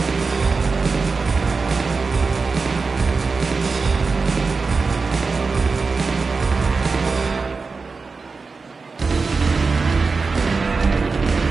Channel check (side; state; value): left; quieter; 4.4 dB